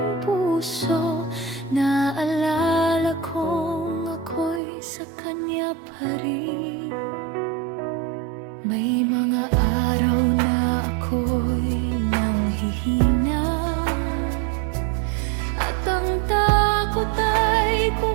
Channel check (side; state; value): left; drops out; at 4.6 s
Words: puso, naalala kong ako'y sa kanya pa rin. May mga araw na ako'y nanghihina, at ang takot ay